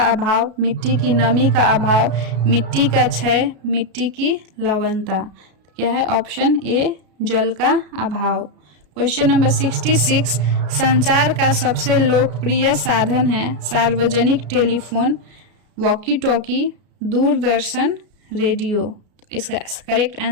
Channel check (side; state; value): left; late; 33 ms